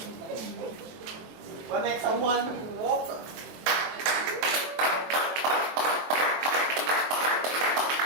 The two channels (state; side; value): late; left; 23 ms